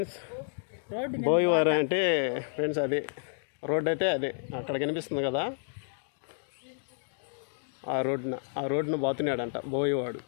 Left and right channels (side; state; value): right; silent; digital silence